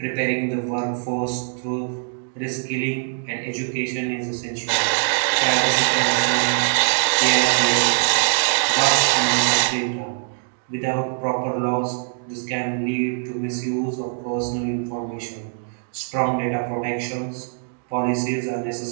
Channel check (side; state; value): left; silent; 61 dB below the other